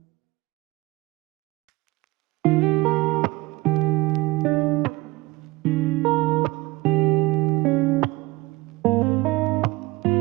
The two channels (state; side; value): quieter; left; 21.2 dB